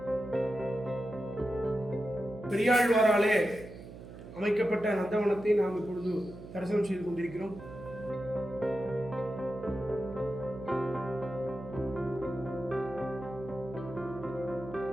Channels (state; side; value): noise; right; hum, 14 dB below the sound